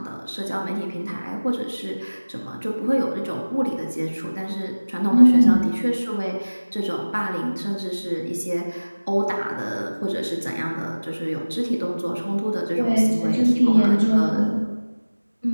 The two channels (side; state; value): both; inverted; correlation -1.00